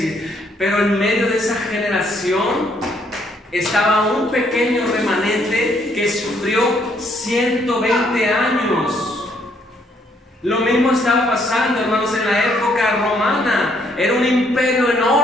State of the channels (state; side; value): normal; both; correlation 0.69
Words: Pero en medio de esa generación estaba un pequeño remanente que sufrió 120 años. Lo mismo estaba pasando, hermanos, en la época romana. Era un imperio